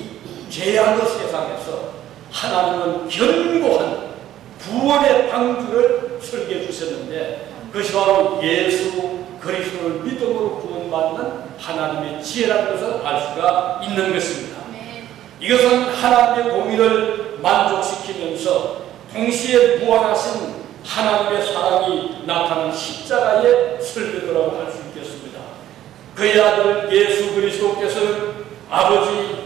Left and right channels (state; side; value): quieter; left; 12.6 dB